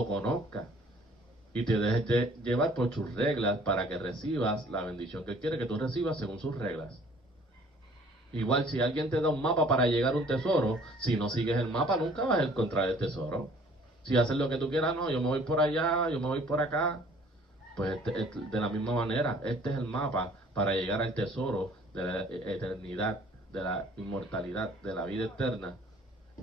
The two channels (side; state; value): both; normal; correlation 0.55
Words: conozca y te dejes de llevar por sus reglas para que recibas la bendición que Él quiere que tú recibas según sus reglas. Igual si alguien te da un mapa para llegar a un tesoro, si no sigues el mapa nunca vas a encontrar el tesoro. Si haces lo que tú quieras, no, yo me voy por allá, yo me voy por acá, pues de la misma manera, este es el mapa para llegar al tesoro de la eternidad, de la inmortalidad, de la vida eterna.